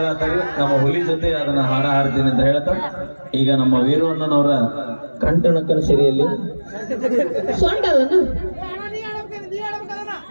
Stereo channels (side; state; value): both; inverted; correlation -1.00